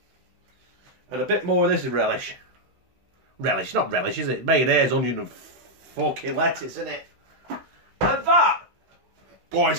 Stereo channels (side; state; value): left; late; 16 ms